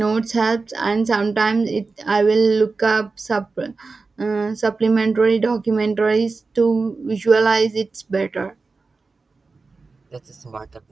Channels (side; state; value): left; quieter; 4.0 dB